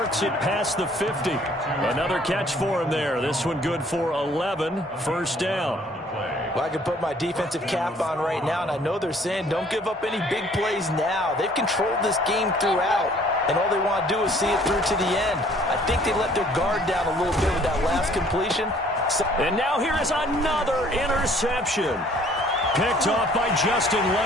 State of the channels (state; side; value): normal; both; correlation 0.58